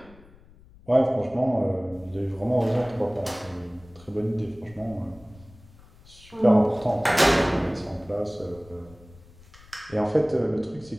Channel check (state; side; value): noise; left; rumble, 23 dB below the sound